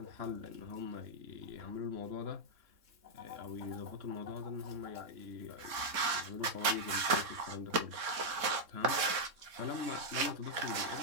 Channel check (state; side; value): late; left; 3.6 ms